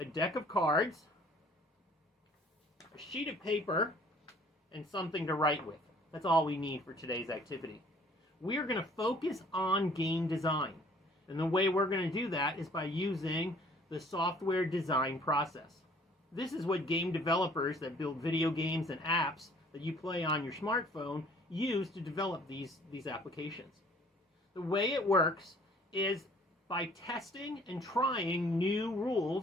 deck of cards, a sheet of paper, and something to write with. That's all we need for today's activity. We are going to focus on game design. And the way we're going to do that is by using the software design process. This is what game developers that build video games and apps that you play on your smartphone use to develop these applications. The way it works is by testing and trying new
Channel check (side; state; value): both; normal; correlation 0.55